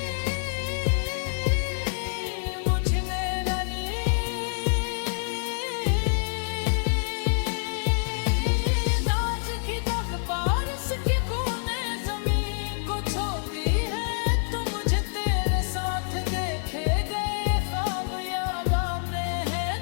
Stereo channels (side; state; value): right; silent; digital silence